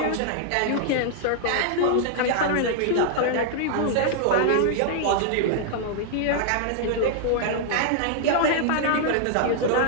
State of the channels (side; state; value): both; different; correlation -0.01